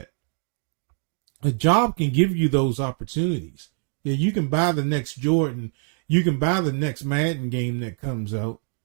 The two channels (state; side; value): silent; left; 62 dB below the other